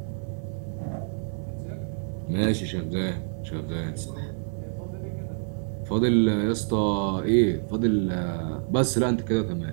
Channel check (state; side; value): silent; left; digital silence